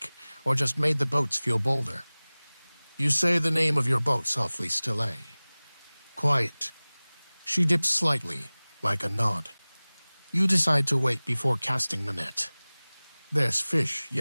or just made the boats feel bolder. You say the name of your boat softly, Stille. Quiet. She dips slightly, like a nod. You decide to wait before casting the net. There's fish,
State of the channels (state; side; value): inverted; both; correlation -1.00